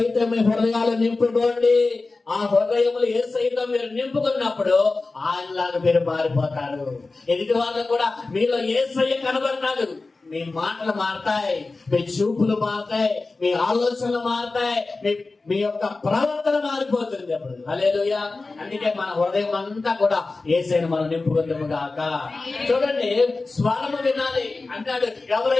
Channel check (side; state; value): right; quieter; 3.6 dB